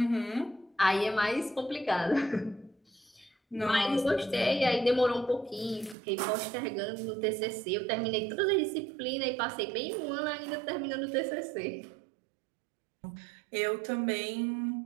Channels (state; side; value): drops out; left; at 6.0 s